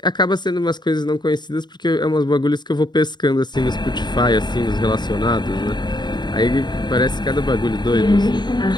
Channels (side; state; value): right; late; 0.21 ms